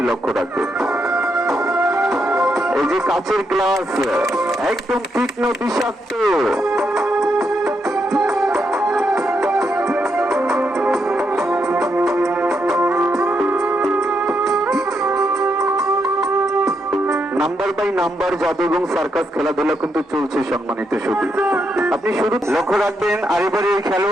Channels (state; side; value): normal; both; correlation 0.80